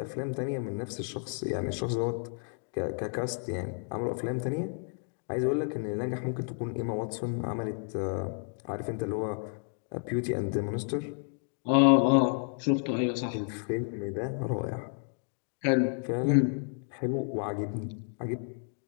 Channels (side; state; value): right; silent; 55 dB below the other